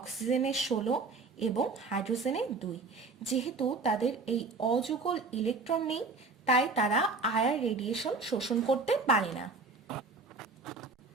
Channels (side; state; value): left; quieter; 4.0 dB